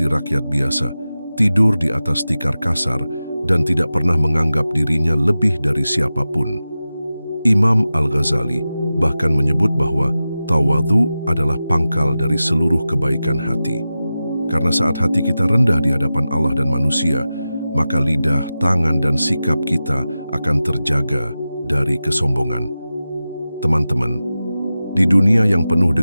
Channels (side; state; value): both; inverted; correlation -0.94